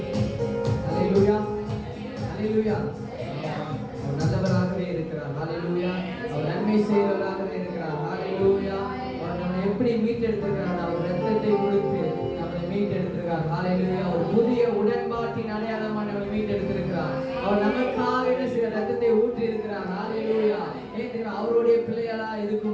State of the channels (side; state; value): both; identical; correlation 1.00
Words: ஹalleluya. ஹalleluya. அவர் நல்லவராகவே இருக்கிறார். ஹalleluya. அவர் நன்மை செய்கிறவராகவே இருக்கிறார். ஹalleluya. அவர் நம்மை எப்படி மீட்டெடுத்திருக்கிறார்? அவர் ரத்தத்தை கொடுத்து நம்மை மீட்டெடுத்திருக்கிறார். மீட்டெடுத்திருக்கிறார். ஹalleluya. ஒரு புதிய உடன்பாட்டின் அடையாளமாக நம்மை மீட்டெடுத்திருக்கிறார். அவர் நமக்காக என்ன செய்ய ரத்தத்தை ஊற்றி இருக்கிறார். ஹalleluya. அவருடைய பிள்ளைகளா